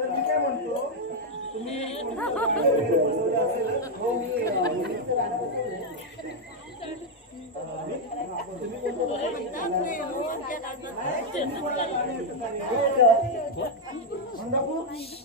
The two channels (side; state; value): both; normal; correlation 0.00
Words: मी काय म्हणतो तुम्ही बसवलं असेल. हो मी मुलीचं गाणं बसवलंय.